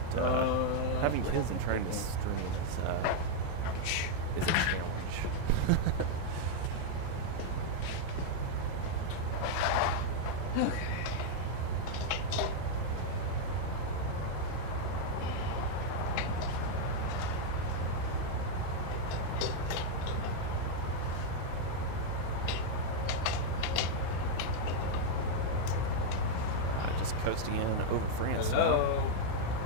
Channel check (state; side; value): different; both; correlation 0.00